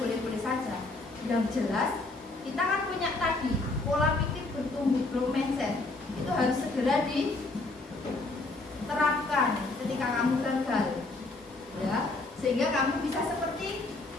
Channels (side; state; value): right; quieter; 3.2 dB